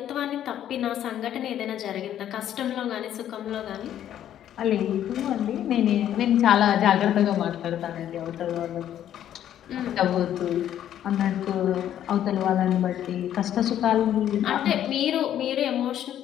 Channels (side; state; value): right; quieter; 11.0 dB